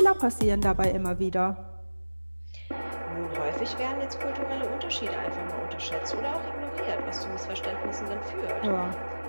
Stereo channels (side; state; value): both; inverted; correlation -1.00